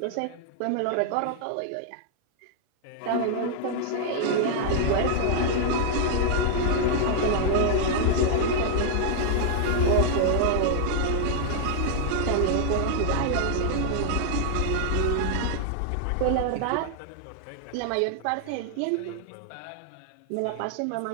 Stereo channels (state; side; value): different; both; correlation 0.00